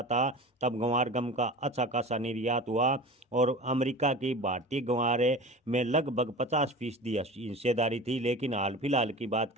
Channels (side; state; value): both; normal; correlation 0.35